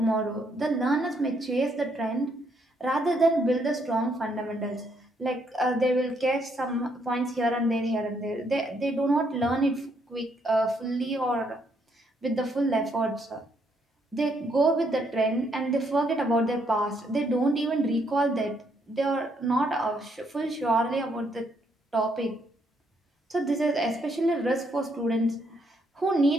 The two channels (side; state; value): both; normal; correlation 0.73